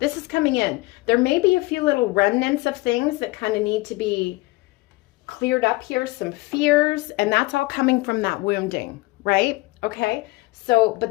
is coming in. There may be a few little remnants of things that kind of need to be cleared up here, some fears, and that's all coming from that wounding, right? Okay, so, but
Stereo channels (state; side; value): quieter; right; 21.8 dB